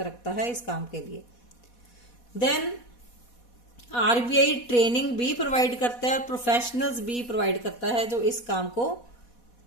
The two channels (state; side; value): late; right; 4.1 ms